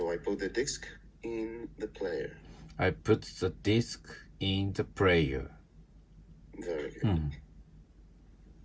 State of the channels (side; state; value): both; identical; correlation 1.00